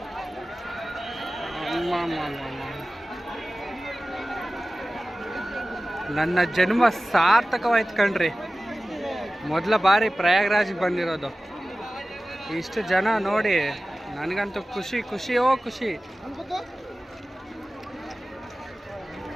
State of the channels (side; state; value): both; normal; correlation 0.96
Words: ನನ್ನ ಜನ್ಮ ಸಾರ್ಥಕವಾಯ್ತು ಕಣ್ರಿ. ಮೊದಲ ಬಾರಿ ಪ್ರಯಾಗ್ರಾಜ್ಗೆ ಬಂದಿರೋದು. ಇಷ್ಟು ಜನ ನೋಡಿ ನನಗಂತೂ ಖುಷಿಯೋ ಖುಷಿ.